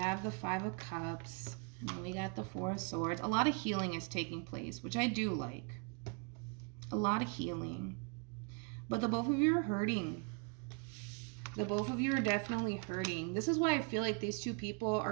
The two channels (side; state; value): left; quieter; 33.5 dB